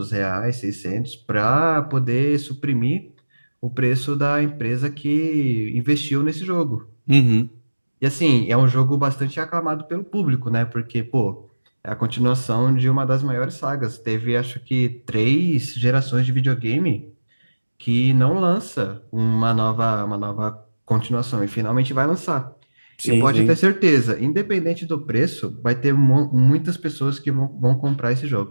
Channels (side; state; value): both; inverted; correlation -1.00